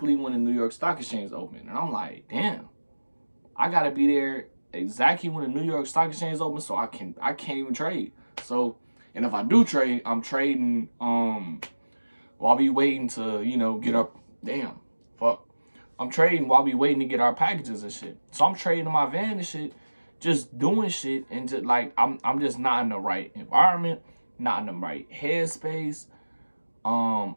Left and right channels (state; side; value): inverted; both; correlation -1.00